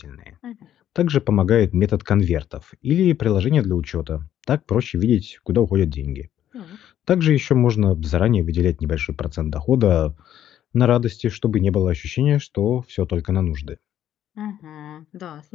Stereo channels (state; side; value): quieter; right; 11.0 dB